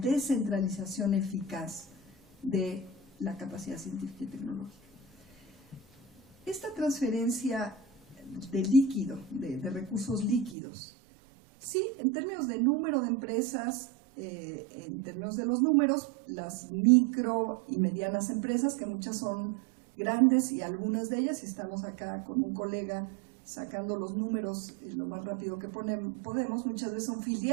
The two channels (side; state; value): left; drops out; at 10.6 s